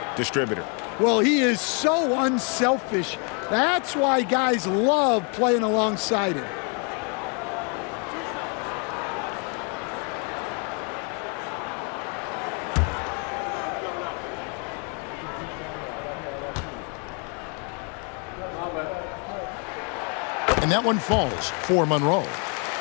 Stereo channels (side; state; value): right; quieter; 37.2 dB